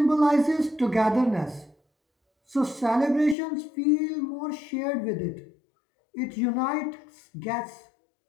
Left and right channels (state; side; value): drops out; right; at 3.4 s